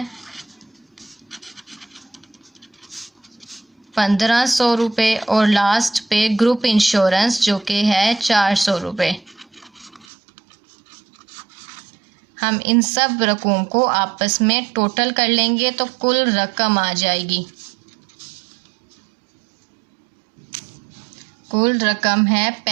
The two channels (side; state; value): left; drops out; at 10.1 s